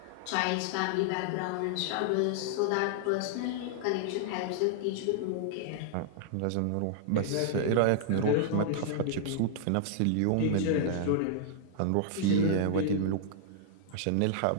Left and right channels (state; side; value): different; both; correlation -0.01